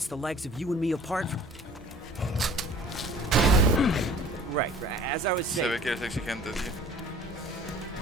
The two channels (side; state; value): both; normal; correlation 0.49